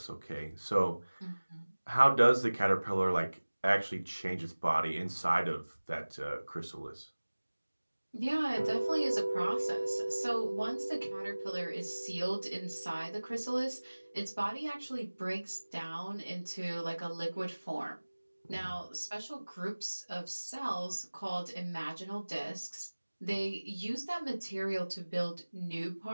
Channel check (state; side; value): inverted; both; correlation -1.00